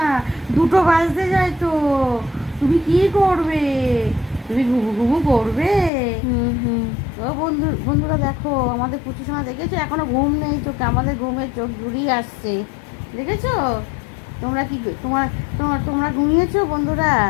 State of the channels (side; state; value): right; drops out; at 5.9 s